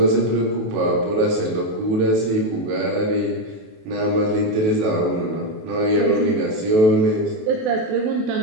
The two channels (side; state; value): left; late; 28 ms